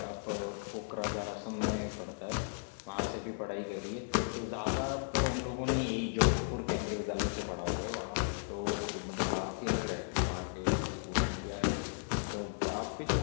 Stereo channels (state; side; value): silent; right; digital silence